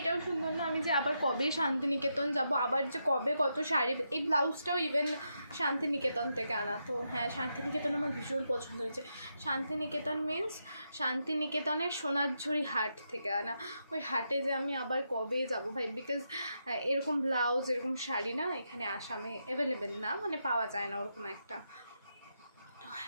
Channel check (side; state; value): both; inverted; correlation -0.83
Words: সুন্দর না? আমি যে আবার কবে শান্তিনিকেতন যাব, আবার যে কবে কত শাড়ি। এই ব্লাউজটাও ইভেন শান্তিনিকেতন থেকে আনা। তো হ্যাঁ, শান্তিনিকেতন আমার ভীষণ পছন্দ হয়েছে। শান্তিনিকেতন মিন্স শান্তিনিকেতনের সোনারঝুরি হাট থেকে আনা। ওই হাটে যে আমি আবার কবে যাব ভাই, বিকজ এরকম ব্লাউজ, এরকম শাড়ি না এখানে আসামে অ্যাভেলেবেল না, পাওয়া যায় না ওরকম একটা। তো